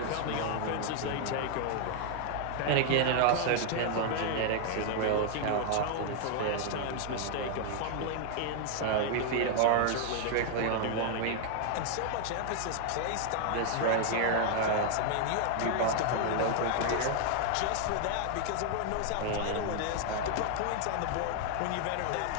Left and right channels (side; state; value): both; different; correlation 0.00